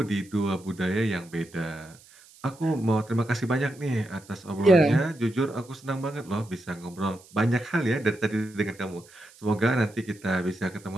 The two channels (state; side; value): noise; right; hiss, 25 dB below the sound